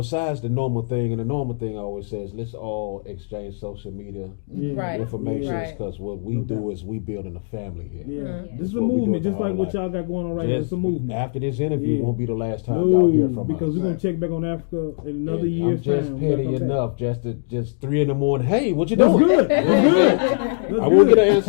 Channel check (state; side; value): silent; right; digital silence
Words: the normal thing, and the normal thing I always says, let's all exchange social media information because what we do is we building a family here. Yeah. This is a movement, just like what y'all got going on right now. It's a movement. After this interview, won't be the last time y'all hear from us. Because we're going to check back on Africa in another year's I'm just time. petty enough just 3 a.m. Hey, what you doing? That's good. I will get an